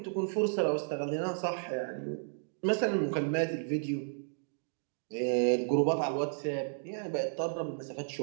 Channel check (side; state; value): left; silent; digital silence